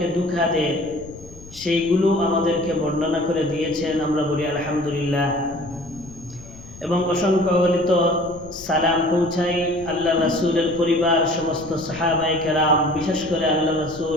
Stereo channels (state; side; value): noise; left; rumble, 18 dB below the sound